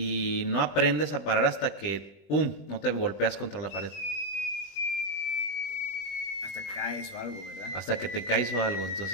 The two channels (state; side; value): late; right; 20 ms